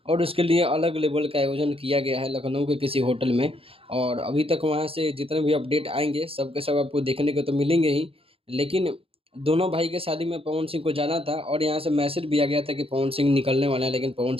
और उसके लिए अलग लेवल का आयोजन किया गया है लखनऊ के किसी होटल में। और अभी तक वहाँ से जितने भी अपडेट आएंगे सब के सब आपको देखने को तो मिलेंगे ही, लेकिन दोनों भाई के शादी में पवन सिंह को जाना था और यहाँ से मैसेज भी आ गया था कि पवन सिंह निकलने वाला है, लेकिन पवन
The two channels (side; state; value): left; late; 0.27 ms